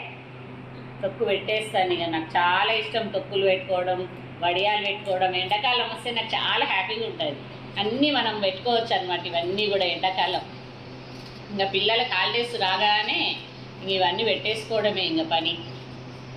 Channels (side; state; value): both; identical; correlation 1.00